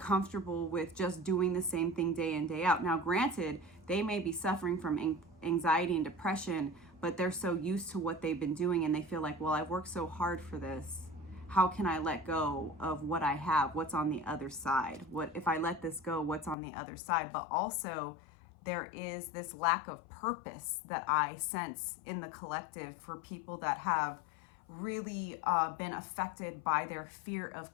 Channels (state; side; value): drops out; right; at 16.6 s